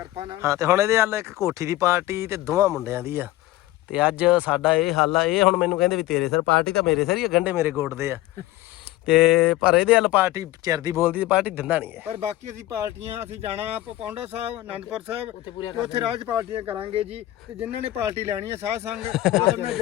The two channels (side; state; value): right; quieter; 16.0 dB